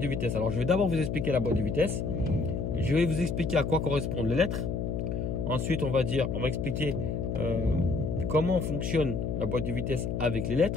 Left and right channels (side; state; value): left; noise; hum, 2 dB below the sound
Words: vitesse. Alors je vais d'abord vous expliquer la boîte de vitesse. Je vais vous expliquer à quoi correspondent les lettres. Ensuite, on va expliquer comment fonctionne la boîte de vitesse avec les